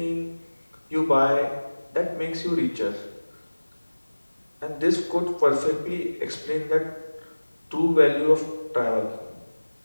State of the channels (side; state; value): both; inverted; correlation -1.00